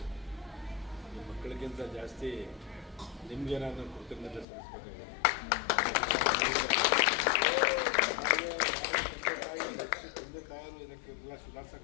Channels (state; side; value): drops out; right; at 4.5 s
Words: ಈ ಮಕ್ಕಳಿಗಿಂತ ಜಾಸ್ತಿ ನಿಮಗೆ ನಾನು ಕೃತಜ್ಞತೆ ಸಲ್ಲಿಸಬೇಕಾಗಿದೆ. ತಂದೆ ತಾಯರು ಇದಕ್ಕೆಲ್ಲ